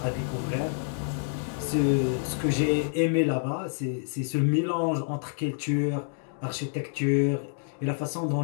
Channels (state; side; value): silent; right; digital silence